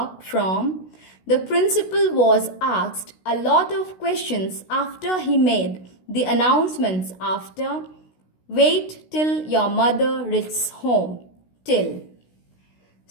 From, the principal was asked a lot of questions after he made the announcements. After, wait till your mother reaches home. Till.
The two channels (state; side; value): late; right; 16 ms